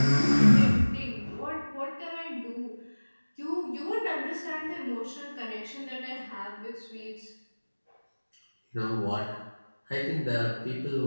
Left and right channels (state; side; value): inverted; both; correlation -1.00